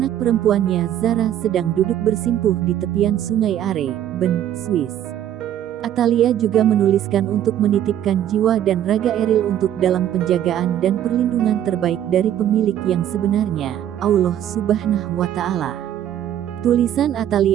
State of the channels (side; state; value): left; quieter; 11.1 dB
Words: perempuannya Zara sedang duduk bersimpuh di tepian Sungai Are, Bern, Swiss. Atalia juga menuliskan untuk menitipkan jiwa dan raga Eril untuk dalam penjagaan dan perlindungan terbaik dari pemilik yang sebenarnya, Allah Subhanahu wa Ta'ala. Tulisan